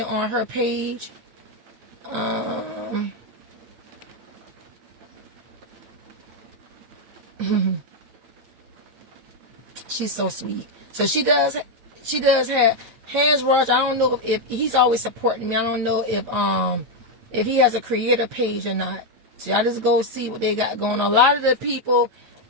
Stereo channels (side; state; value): left; late; 8.8 ms